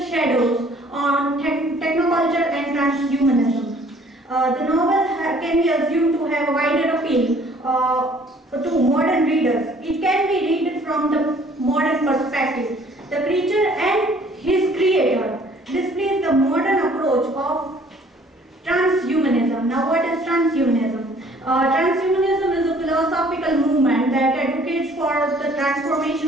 shadows on technoculture and transhumanism. The novel can be assumed to have a wider appeal to modern readers. It can be read from the modern perspective. The creature and his creator displays the modern approach of transhumanism. Now, what is transhumanism? Transhumanism is a philosophical movement that advocates for the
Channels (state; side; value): normal; both; correlation 0.57